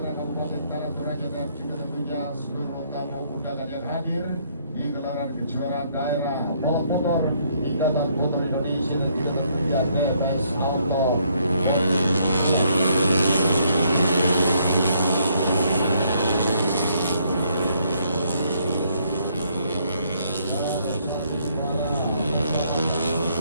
Kabupaten Tanah Toraja dan juga tentunya seluruh tamu undangan yang hadir di gelaran kejuaraan daerah balap motor Ikatan Motor Indonesia dan juga tentunya TMS Auto.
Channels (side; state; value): both; inverted; correlation -0.69